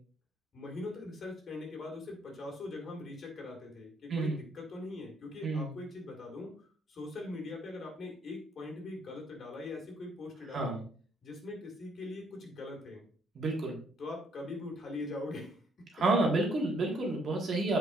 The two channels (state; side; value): normal; both; correlation 0.68